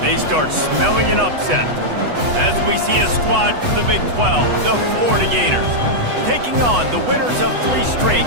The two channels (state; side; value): late; left; 8.2 ms